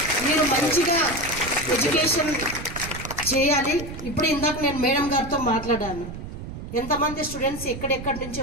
మీరు మంచిగా ఎడ్యుకేషన్ చేయాలి. ఇప్పుడు ఇందాక నేను మేడం గారితో మాట్లాడాను, ఎంతమంది స్టూడెంట్స్ ఎక్కడెక్కడి నుంచి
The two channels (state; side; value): noise; right; rumble, 10 dB below the sound